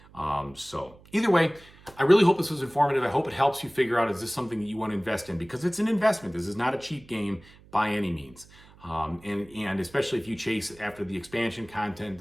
So either way, I really hope this was informative. I hope it helps you figure out, is this something that you want to invest in? Because it's an investment. This is not a cheap game by any means. And especially if you chase after the expansion content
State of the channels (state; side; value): noise; right; hum, 24 dB below the sound